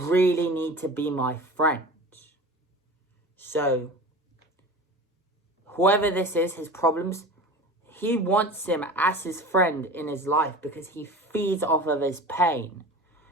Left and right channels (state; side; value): normal; both; correlation 0.35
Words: need to be my friend. So, whoever this is, his problems, he wants him as his friend in his life because he feeds off of his pain.